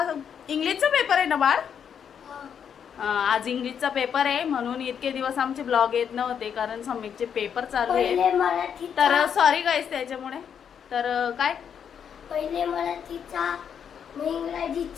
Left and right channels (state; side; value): quieter; right; 7.9 dB